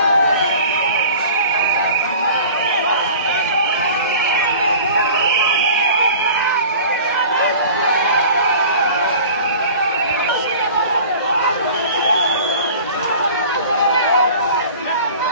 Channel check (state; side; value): inverted; both; correlation -0.42